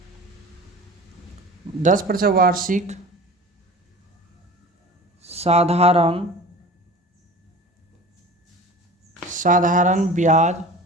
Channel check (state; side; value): normal; both; correlation 0.39